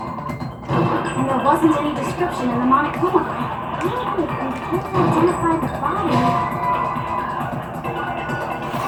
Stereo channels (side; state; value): both; identical; correlation 1.00